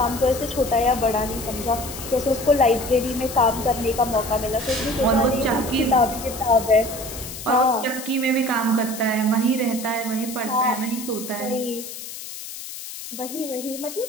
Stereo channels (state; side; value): noise; left; hiss, 10 dB below the sound